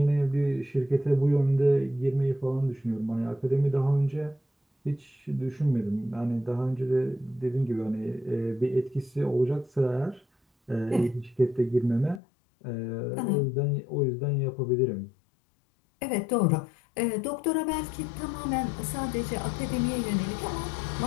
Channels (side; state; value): right; drops out; at 12.2 s